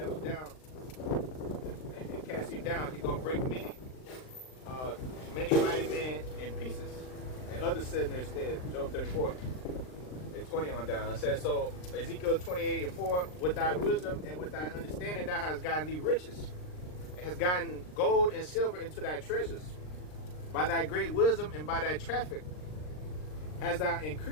down and cast you down. He's gonna break many mighty men in pieces, and others sit in their stead. Job 34. 20 on down. It says, so Ezekiel 28:4, with thy wisdom and with thy understanding thou hast gotten thee riches. It has gotten gold and silver into thy treasures. By thy great wisdom and by thy traffic hast thou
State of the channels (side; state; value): right; late; 39 ms